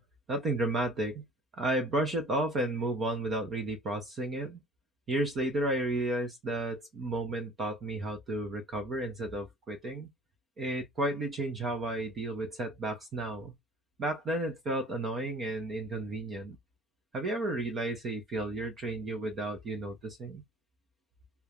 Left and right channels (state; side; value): normal; both; correlation 0.48